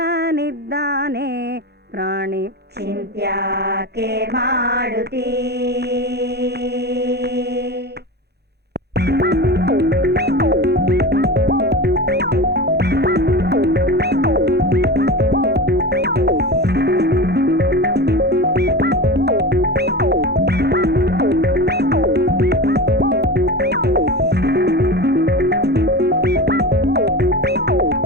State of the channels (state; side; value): normal; both; correlation 0.27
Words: ಪ್ರಾಣಿ. ಚಿಂತ್ಯಾಕೆ ಮಾಡುತ್ತೀ